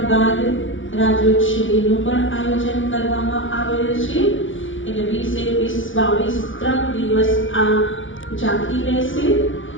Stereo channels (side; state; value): right; late; 0.56 ms